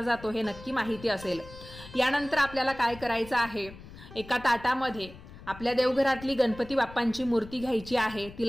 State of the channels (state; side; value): noise; left; rumble, 17 dB below the sound